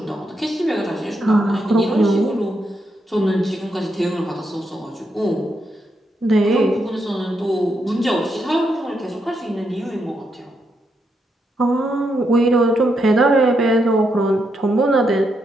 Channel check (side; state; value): both; normal; correlation 0.81